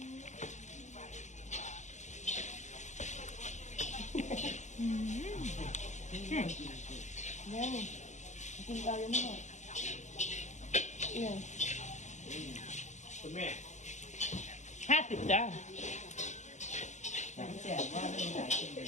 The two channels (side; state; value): right; late; 0.34 ms